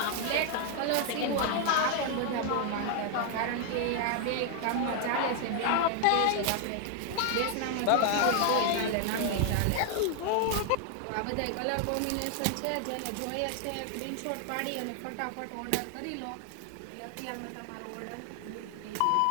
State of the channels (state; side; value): different; both; correlation 0.00